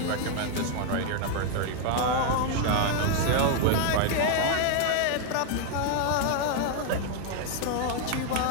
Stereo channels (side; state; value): both; different; correlation 0.00